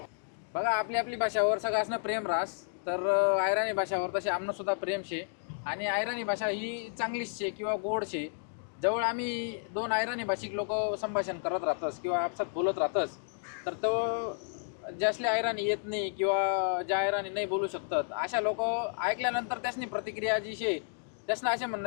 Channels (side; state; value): right; silent; digital silence